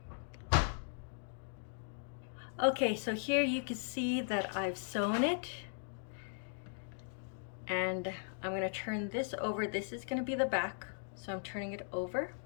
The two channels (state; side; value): silent; right; digital silence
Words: Okay, so here you can see that I've sewn it. And I'm going to turn this over. This is going to be the back, so I'm turning it over.